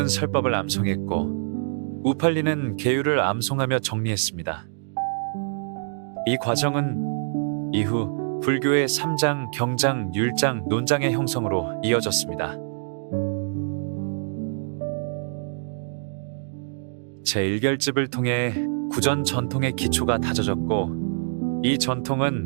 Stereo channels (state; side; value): silent; left; digital silence